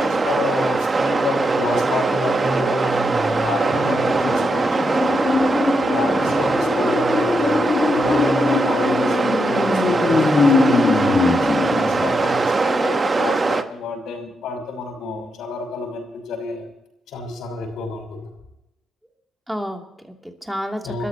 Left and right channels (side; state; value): both; normal; correlation 0.83